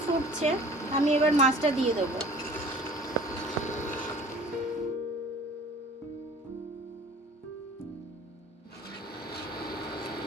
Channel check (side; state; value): both; normal; correlation 0.47